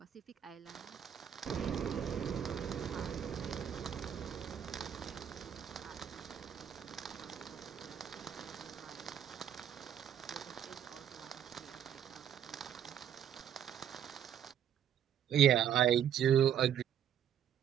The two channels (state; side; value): quieter; left; 9.5 dB